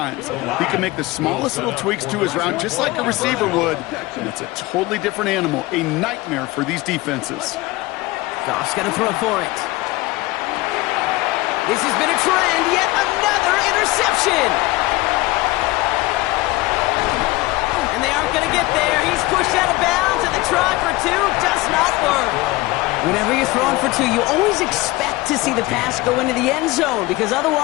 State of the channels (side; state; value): right; quieter; 20.4 dB